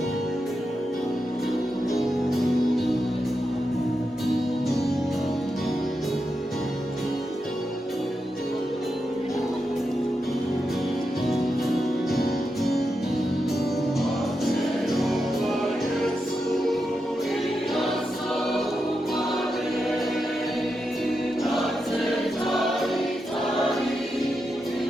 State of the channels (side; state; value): both; normal; correlation 0.87